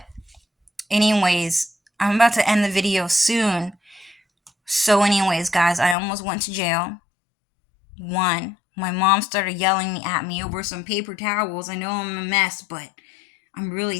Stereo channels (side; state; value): right; drops out; at 6.0 s